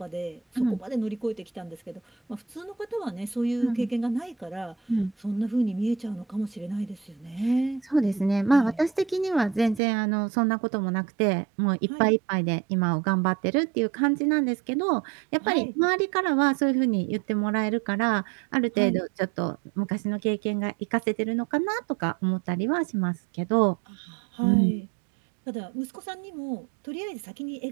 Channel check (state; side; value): drops out; left; at 9.8 s